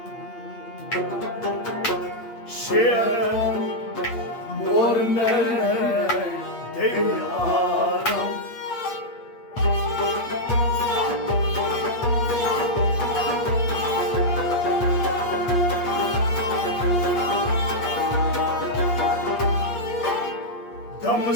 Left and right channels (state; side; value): late; right; 8.5 ms